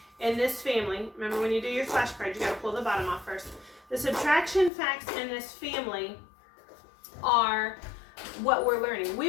in this family, remember when you do your flashcards, you got to pull the bottom off first. The subtraction facts in this family are what we're learning.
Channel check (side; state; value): right; drops out; at 4.7 s